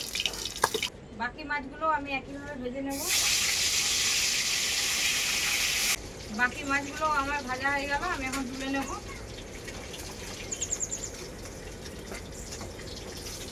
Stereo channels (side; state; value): both; identical; correlation 1.00